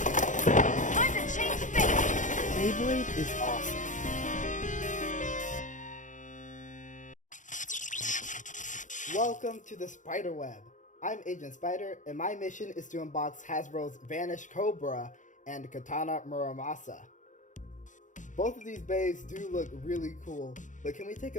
Time to change fate! Beyblade is awesome. Welcome to the spider web. I'm Agent Spyder, and my mission is to unbox Hasbro's Vanish Cobra and Katana Muramasa. Both of these bays do look really cool, but can we take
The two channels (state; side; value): late; right; 0.37 ms